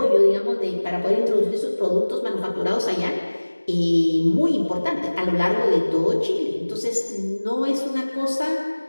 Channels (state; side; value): inverted; both; correlation -1.00